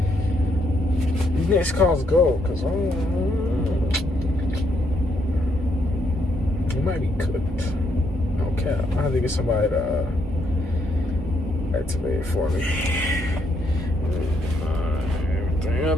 calls go, cause it might be cooked. Okay, I have to get somebody to activate it for me. Everything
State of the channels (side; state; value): both; normal; correlation 0.74